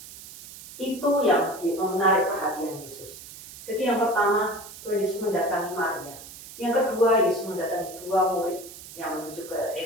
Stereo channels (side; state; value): right; noise; hiss, 15 dB below the sound